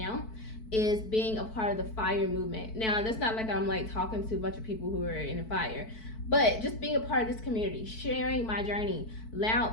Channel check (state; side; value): late; right; 4.6 ms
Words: is being a part of the FIRE movement. Now, that's not like I'm like talking to a bunch of people who are in the FIRE, but just being a part of this community, sharing my journey,